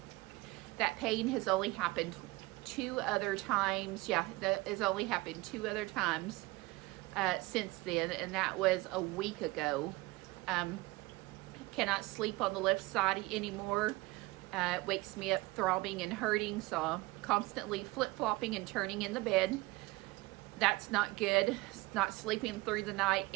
That pain has only happened 2 other times. Yeah, that has only happened 2 other times since then, and that was a week ago. Cannot sleep on the left side anymore. It wakes me up throbbing and hurting, so I'm constantly flip-flopping and turning in the bed. That's not good. It's not sleeping through the night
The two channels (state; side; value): quieter; left; 21.8 dB